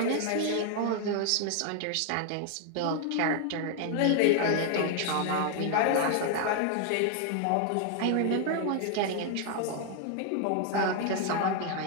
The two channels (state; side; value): different; both; correlation 0.00